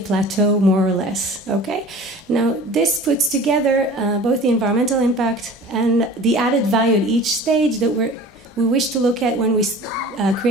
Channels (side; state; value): both; normal; correlation 0.41